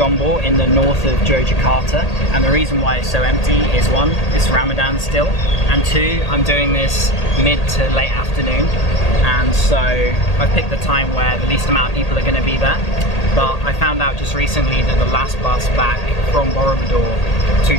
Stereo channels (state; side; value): late; right; 1.8 ms